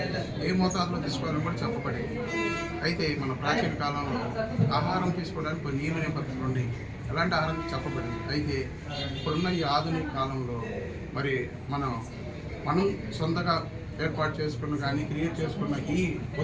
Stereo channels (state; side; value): identical; both; correlation 1.00